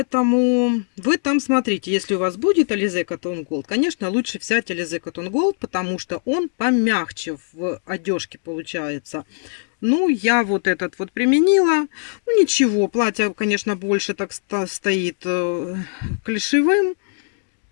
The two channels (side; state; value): right; silent; 65 dB below the other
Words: вы там смотрите, если у вас будет Alize Cotton Gold, конечно, лучше взять Alize Cotton Gold, потому что он помягче в одежке получается. Ну, я вот этот вот применила. Ну, ничего, платье, конечно, больше так стоит клишевым.